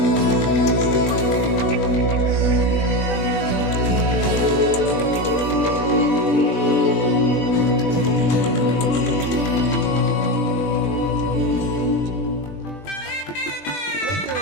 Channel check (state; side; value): late; right; 20 ms